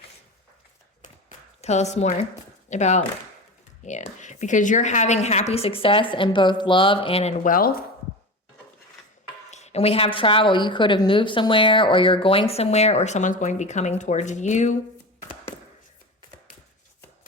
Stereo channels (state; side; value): normal; both; correlation 0.27